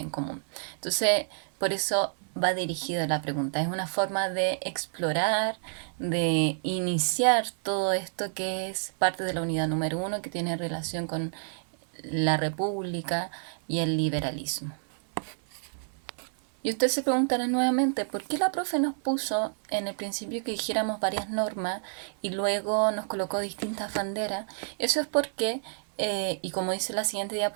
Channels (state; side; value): silent; left; 59 dB below the other